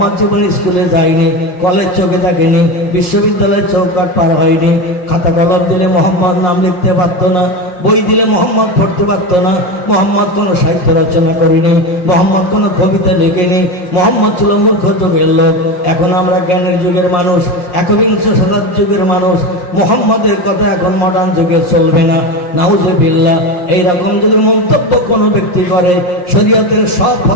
জীবনে স্কুলে যায়নি, কলেজ চোখে থাকেনি, বিশ্ববিদ্যালয়ের চৌকাট পার হয়নি, খাতা কলম দিলে মোহাম্মদ নাম লিখতে পারতো না, বই দিলে মোহাম্মদ পড়তে পারতো না, মোহাম্মদ কোনো সাহিত্য রচনা করেনি, মোহাম্মদ কোনো কবিতা লিখেনি, মোহাম্মদ ছিল মূর্খ যুগের লোক। এখন আমরা জ্ঞানের যুগের মানুষ, একবিংশ শতাব্দীর যুগের মানুষ, মোহাম্মদের কথা এখন মডার্ন যুগে চলবে না। নাউজুবিল্লাহ। এইরকম যদি মন্তব্য কোনো ব্যক্তি করে, শরীয়তের সব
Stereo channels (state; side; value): late; right; 5.6 ms